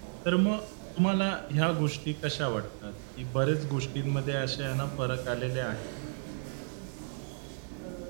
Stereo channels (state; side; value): silent; left; 56 dB below the other